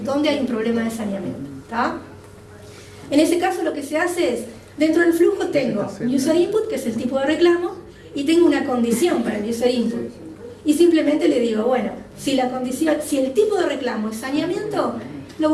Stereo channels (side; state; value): both; identical; correlation 1.00